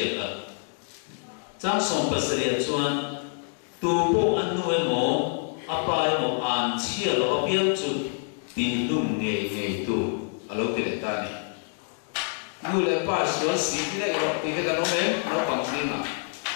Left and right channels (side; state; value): right; silent; 55 dB below the other